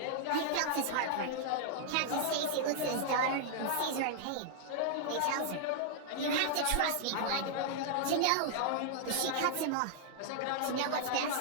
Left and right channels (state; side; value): different; both; correlation -0.01